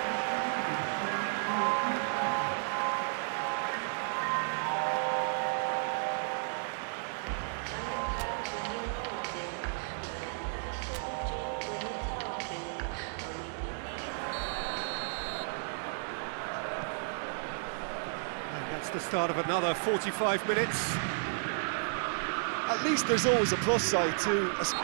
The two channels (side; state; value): left; silent; digital silence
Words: The start of another 45 minutes. At least there's always a plus side to...